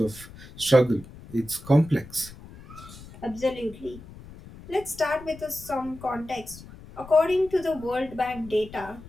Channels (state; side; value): noise; left; rumble, 17 dB below the sound